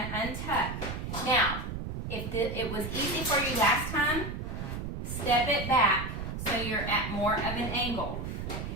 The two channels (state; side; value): noise; right; rumble, 5 dB below the sound